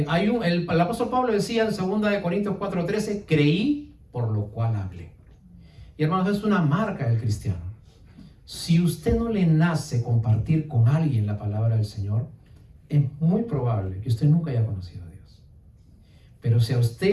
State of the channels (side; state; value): both; identical; correlation 1.00